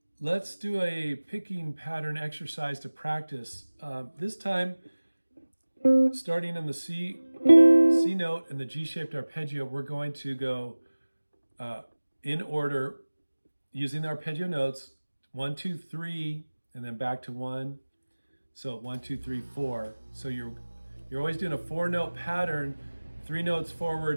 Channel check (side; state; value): both; inverted; correlation -1.00